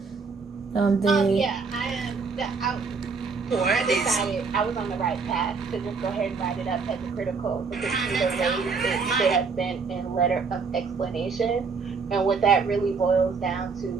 They. Yeah, I decided I was on the right path to just go ahead and write it up as a critical because either way it should have been in letter of explanation. And what that really boils down to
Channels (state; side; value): quieter; left; 4.9 dB